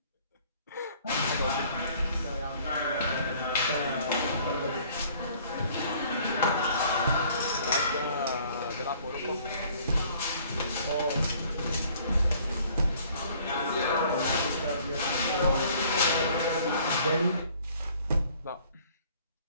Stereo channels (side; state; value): both; inverted; correlation -0.57